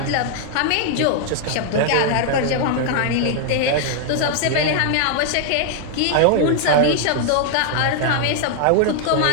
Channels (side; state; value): both; different; correlation 0.00